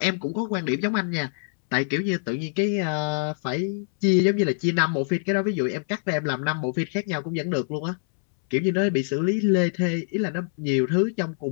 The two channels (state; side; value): silent; right; 62 dB below the other